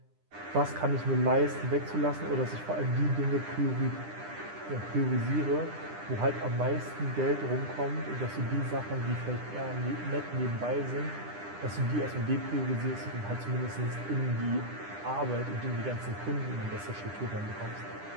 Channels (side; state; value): left; late; 10 ms